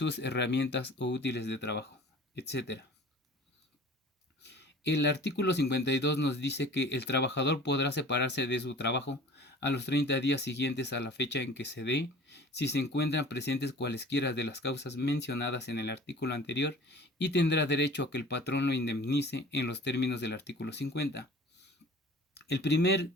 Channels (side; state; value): both; normal; correlation 0.44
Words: herramientas o útiles de trabajo, etc. El artículo 52 nos dice que el trabajador podrá separarse de su trabajo a los 30 días siguientes a la fecha en que se dé, si se encuentran presentes cualesquiera de las causas mencionadas en el artículo anterior, y tendrá derecho a que el patrón lo indemnice en los términos del artículo 50. El primer